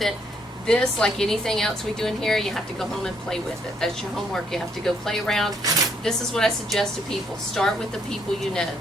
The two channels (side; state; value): both; normal; correlation 0.71